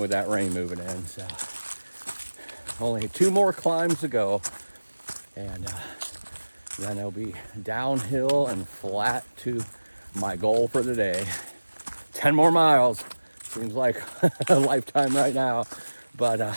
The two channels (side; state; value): both; inverted; correlation -1.00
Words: that rain moving in. So only 2 more climbs to go, and then it'll be downhill and flat to my goal for the day. 10 more miles. Seems like a lifetime right now.